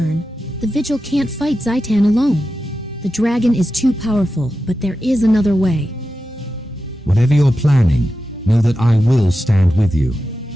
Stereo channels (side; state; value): both; normal; correlation 0.91